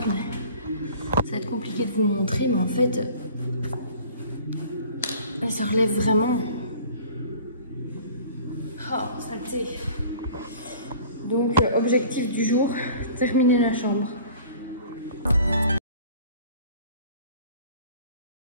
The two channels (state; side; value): inverted; both; correlation -0.48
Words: mais ça va être compliqué de vous montrer, mais en fait, elle se relève vraiment. Oh, saleté. Donc, objectif du jour, terminer la chambre.